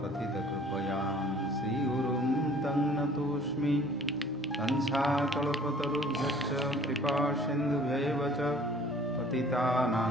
पतितकृपयां श्रीगुरुं तं नतोऽस्मि कंसाकल्पतरुभ्यश्च कृपासिन्धुभ्यैव च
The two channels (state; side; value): normal; both; correlation 0.52